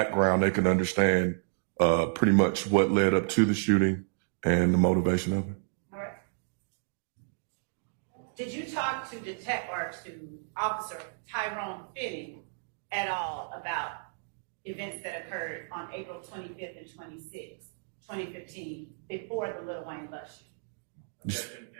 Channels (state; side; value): silent; left; digital silence